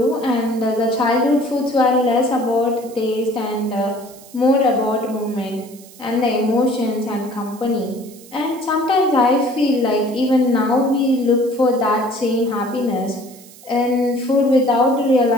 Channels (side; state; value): right; noise; hiss, 21 dB below the sound